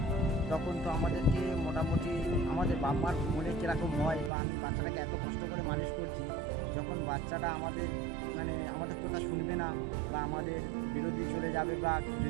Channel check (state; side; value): drops out; left; at 4.3 s